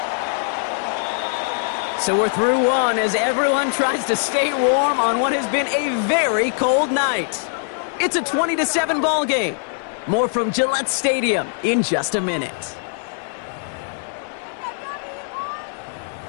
So we're through one as everyone tries to stay warm on what has been a very cold night. It's a 20-7 ball game. More from Gillette Stadium in just a minute.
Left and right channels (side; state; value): right; silent; digital silence